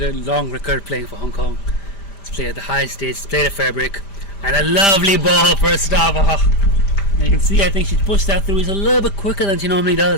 long record playing for Hong Kong. He's played at the high stage, played at Fairbrick, and a lovely ball first off. And you can see, I think she's pushed that through. He's a little bit quicker than she normally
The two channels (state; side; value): late; right; 5.0 ms